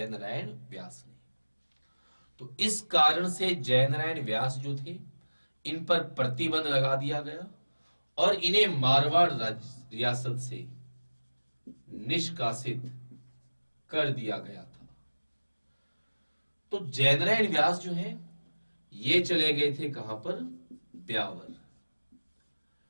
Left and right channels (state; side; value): inverted; both; correlation -1.00